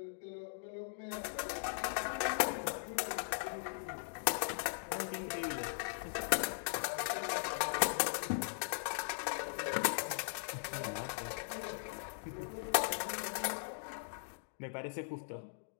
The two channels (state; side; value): silent; right; digital silence